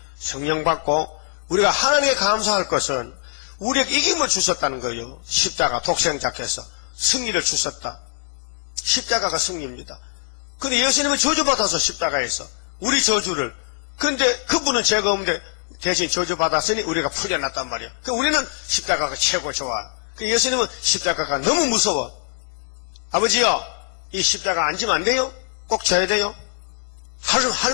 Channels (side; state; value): right; silent; digital silence